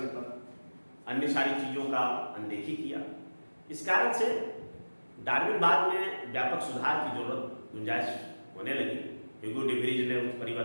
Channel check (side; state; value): both; inverted; correlation -1.00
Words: पर, अन्य सारी चीजों का अनदेखी किया। इस कारण से डार्विनवाद में व्यापक सुधार की जरूरत, गुंजाइश होने लगी। ह्यूगो डे व्रीज ने उस